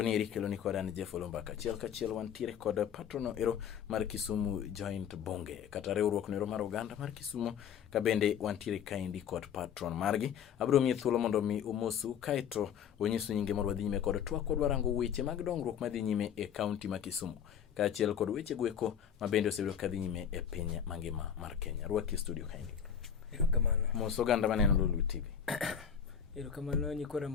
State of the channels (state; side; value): quieter; right; 8.2 dB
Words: ni kelo ni kod an Jeff Olombaka. Kachiel wantiere kod patrono ero mar Kisumu Joint Bunge, kata riwruok nero mar oganda mar Kisumu, kabende wantiere kaendi kod patron margi. Abiro miye thuolo mondo mi umosu kaeto onyisu nyinge mar wadhi nyime kod twak kod warango weche mag dongruok madhi nyime e kaunti ma Kisumu. Kachiel kod weche gweko mabende osebedo kadhi nyime e piny mangima mar Kenya. Rwaki studio kaendi. Erokamano. Moso ganda maneno Lulu TV. Erokamano nyikora